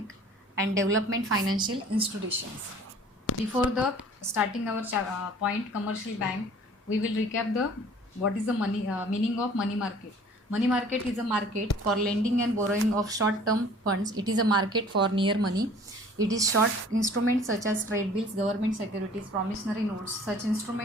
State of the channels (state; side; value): normal; both; correlation 0.50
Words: and development financial institutions. Before the starting our point commercial bank, we will recap the what is the meaning of money market. Money market is a market for lending and borrowing of short term funds. It is a market for near money. It is short instruments such as trade bills, government securities, promissory notes. Such